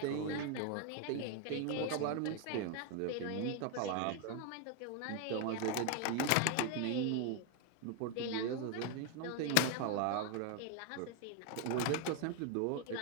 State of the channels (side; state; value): both; different; correlation 0.00